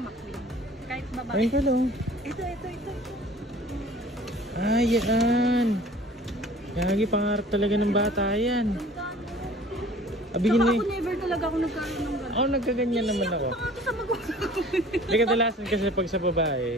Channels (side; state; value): both; normal; correlation 0.48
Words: McQueen. Kahit babae. Ayun ka lang. Ito. Ay, yan. Gagi, pangarap talaga ng bata yan. Tsaka ako never talaga ako nagkaroon ng gano'n. Ako nagkaganyan naman ako. Hindi kadalasan kasi pag sa babae,